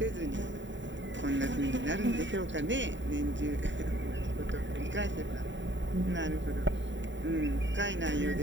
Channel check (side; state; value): left; late; 0.54 ms